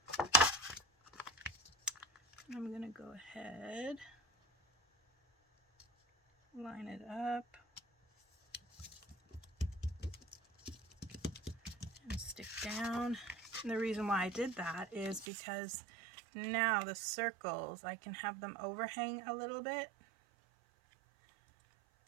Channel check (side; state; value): left; drops out; at 15.2 s